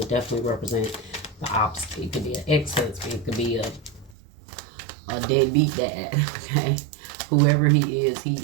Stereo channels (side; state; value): left; drops out; at 4.2 s